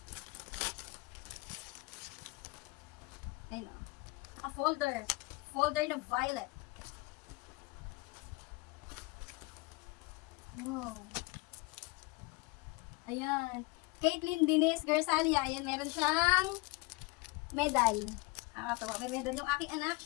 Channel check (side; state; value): right; quieter; 25.1 dB